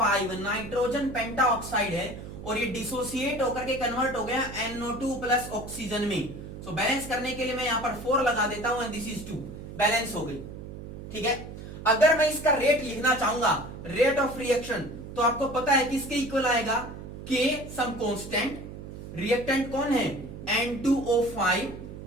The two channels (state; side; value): noise; right; hum, 11 dB below the sound